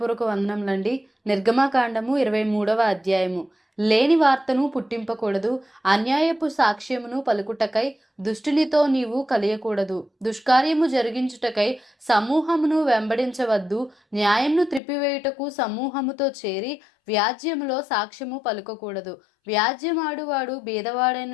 వందనములండి. నిర్గమకాండము 23వ అధ్యాయము. లేని వార్తను పుట్టింపకూడదు, అన్యాయపు సాక్ష్యమును పలుకుటకై దుష్టునితో నీవు కలియకూడదు, దుష్కార్యము జరిగించుటకై సమూహమును వెంబడించవద్దు, న్యాయమును త్రిప్పివేయుటకు సమూహముతో చేరి వ్యాజ్యములో సాక్ష్యము పలుకకూడదు. వ్యాజ్యమాడువాడు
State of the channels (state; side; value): drops out; right; at 14.8 s